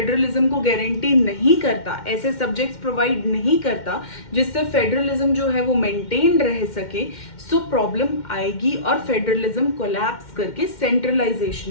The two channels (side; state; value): right; late; 2.1 ms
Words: को गारंटी नहीं करता, ऐसे सब्जेक्ट्स प्रोवाइड नहीं करता जिससे फेडरलिज्म जो है वो मेंटेन रह सके, प्रॉब्लम आएगी और फेडरलिज्म कोलैप्स करके सेंट्रलाइजेशन